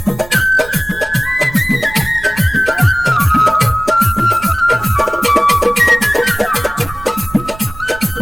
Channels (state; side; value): noise; right; rumble, 17 dB below the sound